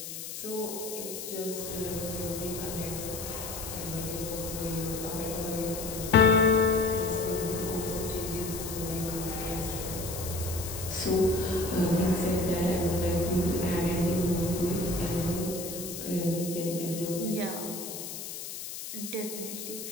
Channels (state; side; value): noise; left; hiss, 8 dB below the sound